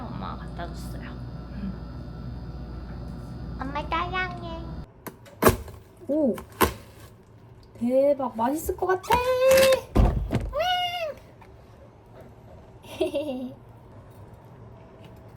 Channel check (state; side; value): identical; both; correlation 1.00